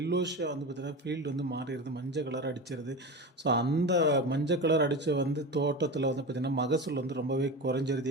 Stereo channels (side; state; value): both; normal; correlation 0.26